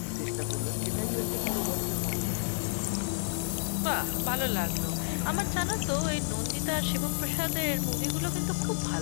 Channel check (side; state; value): right; silent; 58 dB below the other